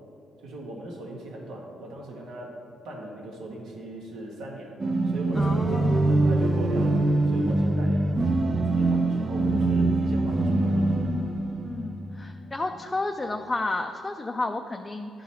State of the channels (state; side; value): normal; both; correlation 0.87